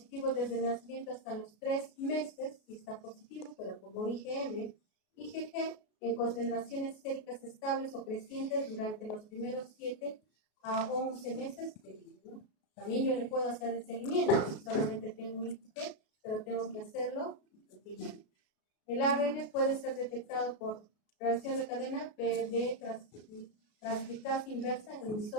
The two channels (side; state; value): right; late; 33 ms